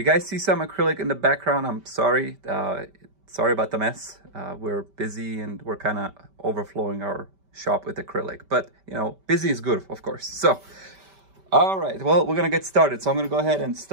guys see some acrylic in the background, I'm sorry. Sorry about the mess. We're busy and we're kind of overflowing our shop with acrylic, but you know, busy is good, of course. So all right, well, we're gonna get started. So I'm gonna go ahead and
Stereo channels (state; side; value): late; left; 5.1 ms